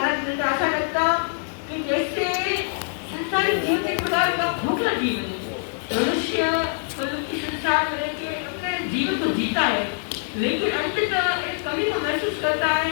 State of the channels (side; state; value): right; silent; digital silence